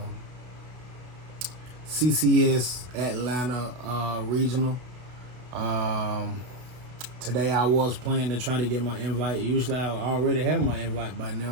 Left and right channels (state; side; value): late; left; 32 ms